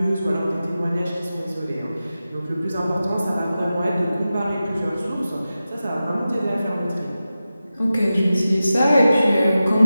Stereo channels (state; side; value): inverted; both; correlation -0.93